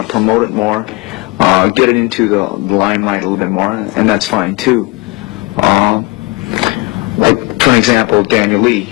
to promote it more, get it into the limelight a little bit more, and that's fine too. Like, for example, Daniel Lee,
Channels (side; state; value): right; quieter; 23.5 dB